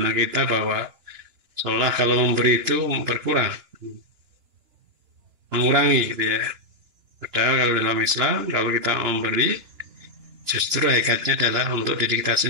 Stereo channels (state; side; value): late; left; 2.9 ms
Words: kita bahwa seolah kalau memberi itu berkurang, mengurangi, gitu ya. Padahal kalau dalam Islam, kalau kita memberi, justru hakikatnya adalah untuk diri kita